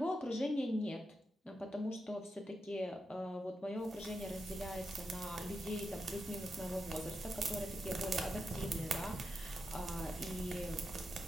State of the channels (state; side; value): normal; both; correlation 0.87